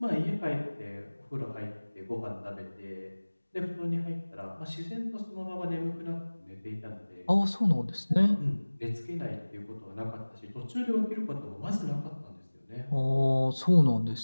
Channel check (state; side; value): inverted; both; correlation -1.00